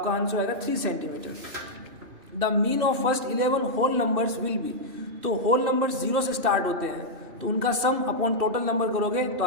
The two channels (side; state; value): left; late; 2.6 ms